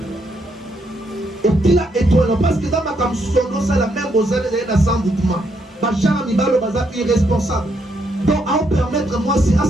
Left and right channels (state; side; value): normal; both; correlation 0.76